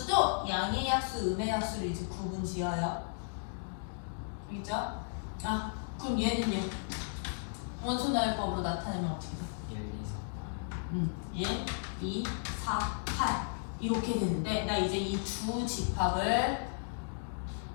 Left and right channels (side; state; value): right; silent; digital silence